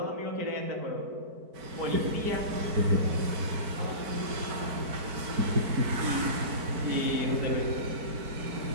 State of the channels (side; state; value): left; late; 4.5 ms